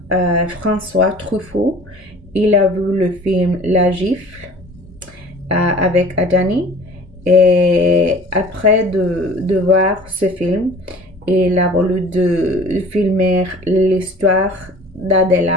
François Truffaut, il a vu le film La Gifle avec Adjani. Et après de voir ce film, il a voulu de filmer l'histoire d'Adèle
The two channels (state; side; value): normal; both; correlation 0.45